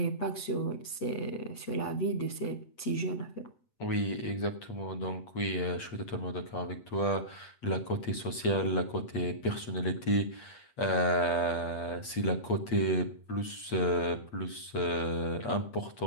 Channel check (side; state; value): right; late; 8.4 ms